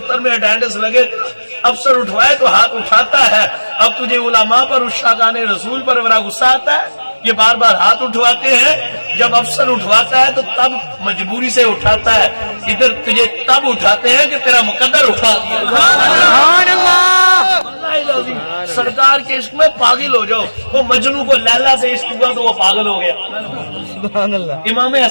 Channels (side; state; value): both; inverted; correlation -1.00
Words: میں اٹینڈنس لگے, افسر اٹھوائے تو ہاتھ اٹھاتا ہے. اب تجھے علماء پر عشاقان رسول پر بڑا غصہ آتا ہے, یہ بار بار ہاتھ اٹھواتے ہیں. جب افسر اٹھواتا ہے تو تب مجبوری سے اٹھاتا ہے, ادھر تجھے تب اٹھاتے ہیں کہ تیرا مقدر اٹھا دیا. سبحان اللہ. سرکار کے عشق میں پاگل ہو جاؤ. وہ مجنو کو لیلا سے عشق ہوا تو وہ پاگل ہو گیا. سبحان اللہ. امام